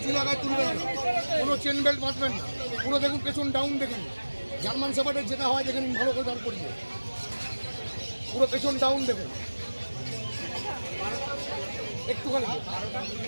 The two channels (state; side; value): inverted; both; correlation -1.00